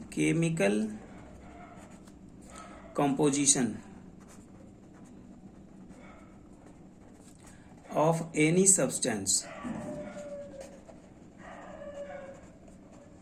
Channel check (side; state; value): both; identical; correlation 1.00